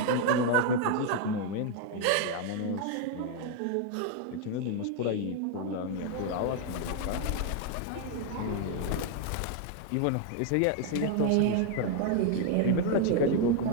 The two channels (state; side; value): different; both; correlation 0.00